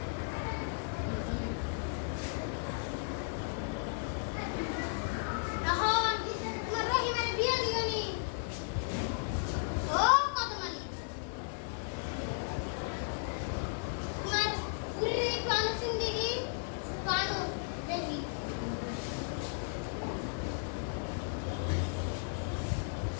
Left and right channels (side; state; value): right; silent; 54 dB below the other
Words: এখন তোমার রহিমের বিয়ে দিওনি ও কত মালিক তোমার পুরী প্রাণ সিন্দিগি প্রাণ দেখি